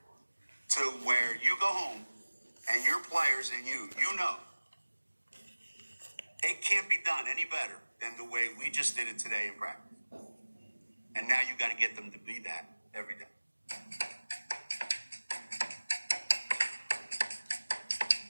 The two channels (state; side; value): inverted; both; correlation -1.00